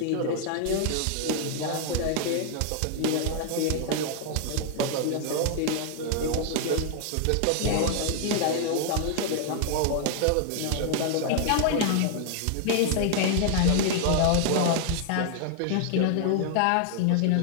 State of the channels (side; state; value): both; different; correlation 0.00